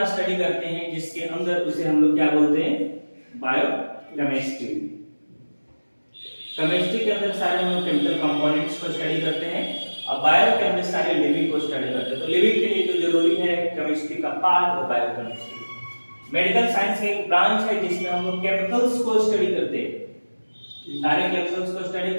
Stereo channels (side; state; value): both; inverted; correlation -1.00